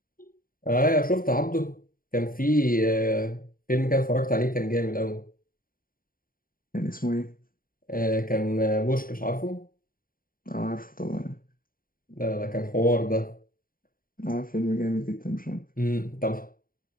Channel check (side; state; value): right; late; 0.41 ms